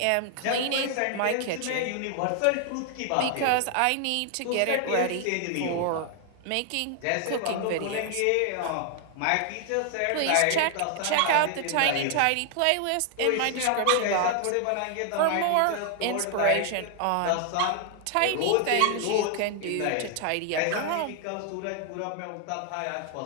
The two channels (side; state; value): both; different; correlation 0.00